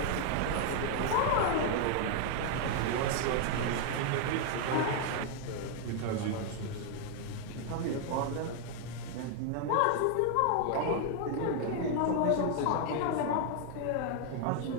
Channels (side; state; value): both; different; correlation 0.00